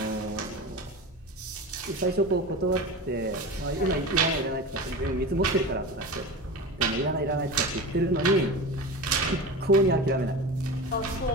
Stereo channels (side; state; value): both; normal; correlation 0.29